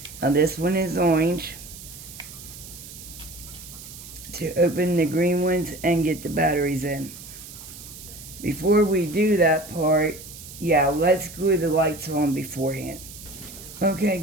now this one is orange, to open the green ones and get the batteries in. Before we do that part, yeah, let's glue the lights on beforehand. Okay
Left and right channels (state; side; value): noise; right; hiss, 15 dB below the sound